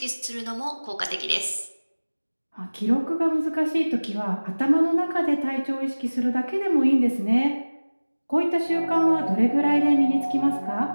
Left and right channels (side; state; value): both; inverted; correlation -1.00